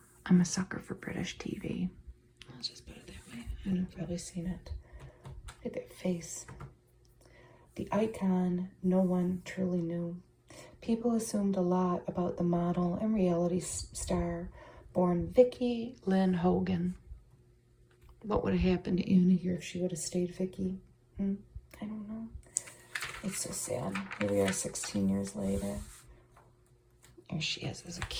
a sucker for British TV. Let's just put it that way. I know I've probably seen it. Look at that face. The icon no one truly knew. People assumed a lot about the model and reality star born Vicky Lynn Hogan. What would have happened to Anna here if she would have stayed Vicky? I don't know. It's so sad. Here we are 16 years later. There she is as a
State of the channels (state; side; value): identical; both; correlation 1.00